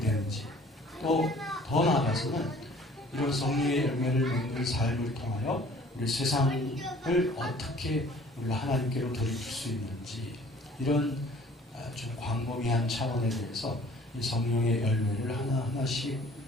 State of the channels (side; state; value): both; normal; correlation 0.52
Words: 되는지, 또 더 나아가서는 이런 성령의 열매를 맺는 삶을 통하여 우리 세상을 어떻게 우리가 하나님께로 돌이킬 수 있는지, 이런 좀 광범위한 차원에 대해서 이 성령의 열매를 하나하나씩